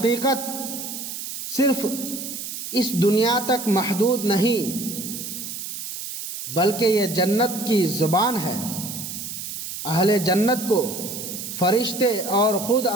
صرف اس دنیا تک محدود نہیں، بلکہ یہ جنت کی زبان ہے۔ اہل جنت کو فرشتے اور خود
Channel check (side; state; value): right; noise; hiss, 7 dB below the sound